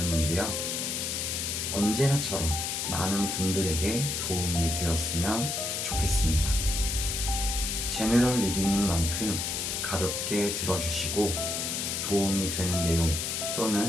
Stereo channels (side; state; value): left; noise; hiss, 1 dB below the sound